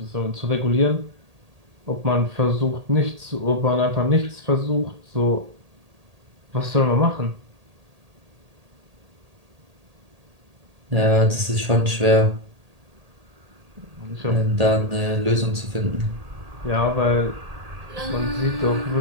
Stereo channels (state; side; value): late; left; 1.8 ms